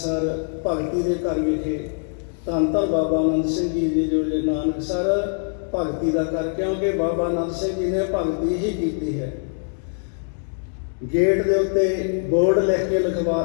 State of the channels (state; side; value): silent; right; 63 dB below the other